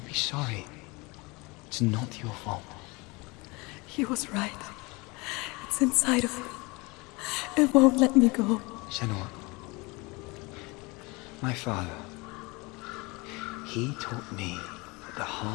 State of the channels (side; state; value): right; quieter; 25.8 dB